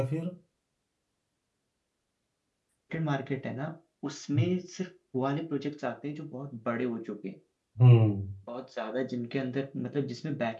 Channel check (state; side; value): identical; both; correlation 1.00